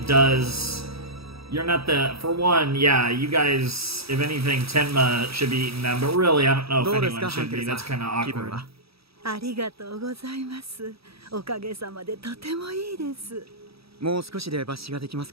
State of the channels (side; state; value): left; late; 0.77 ms